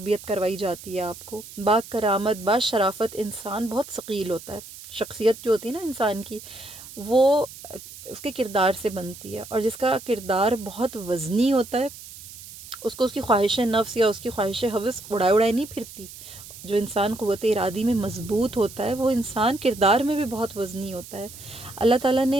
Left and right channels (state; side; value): noise; right; hiss, 15 dB below the sound